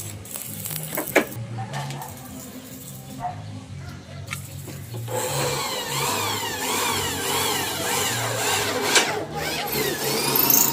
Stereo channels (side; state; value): both; identical; correlation 1.00